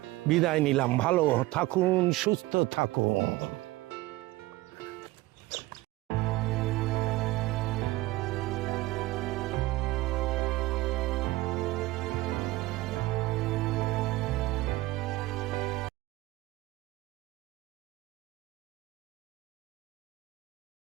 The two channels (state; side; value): quieter; left; 19.0 dB